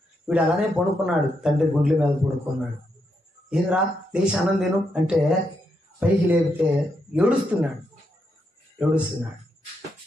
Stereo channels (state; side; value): normal; both; correlation 0.81